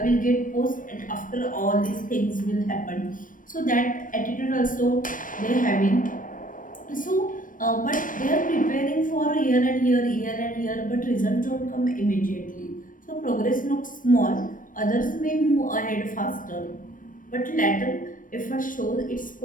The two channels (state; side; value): late; right; 0.39 ms